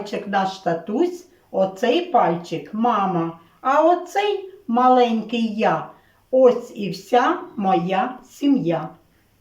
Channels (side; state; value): both; identical; correlation 1.00